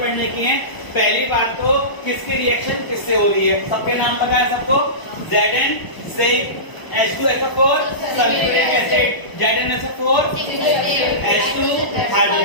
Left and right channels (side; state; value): right; late; 1.0 ms